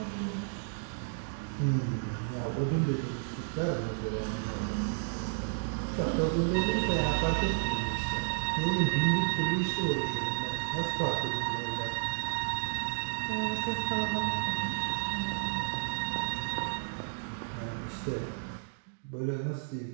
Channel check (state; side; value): silent; left; digital silence